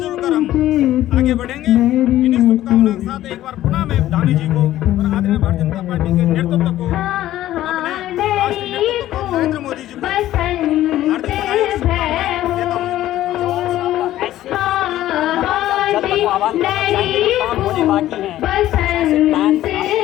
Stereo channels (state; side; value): quieter; right; 13.9 dB